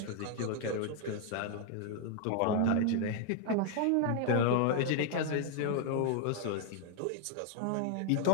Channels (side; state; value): both; different; correlation 0.00